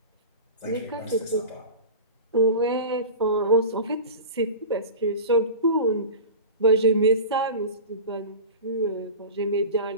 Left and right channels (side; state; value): both; inverted; correlation -0.32